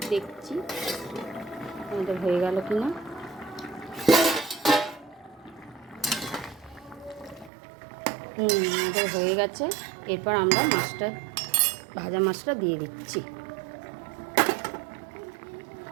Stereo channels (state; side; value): drops out; left; at 7.5 s